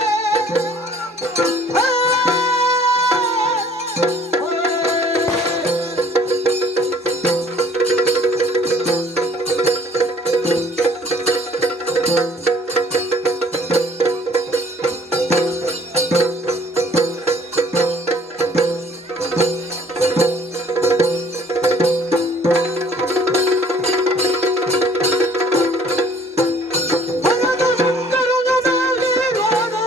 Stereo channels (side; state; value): both; normal; correlation 0.56